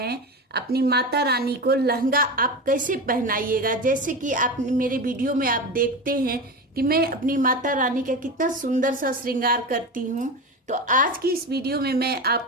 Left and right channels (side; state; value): both; normal; correlation 0.24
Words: अपनी माता रानी को लहंगा आप कैसे पहनाइएगा। जैसे कि आप मेरे वीडियो में आप देखते हैं कि मैं अपनी माता रानी का कितना सुंदर सा श्रृंगार करती हूँ। तो आज की इस वीडियो में मैं